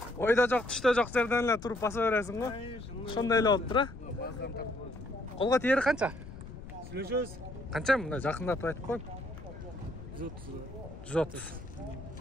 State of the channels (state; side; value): noise; left; rumble, 13 dB below the sound